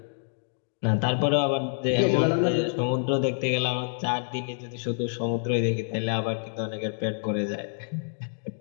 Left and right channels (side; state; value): right; silent; digital silence